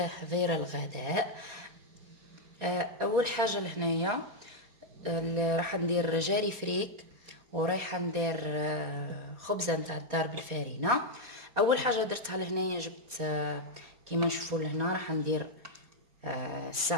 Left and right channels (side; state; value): left; late; 4.2 ms